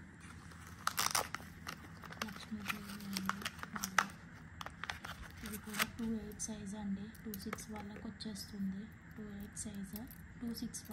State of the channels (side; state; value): both; identical; correlation 1.00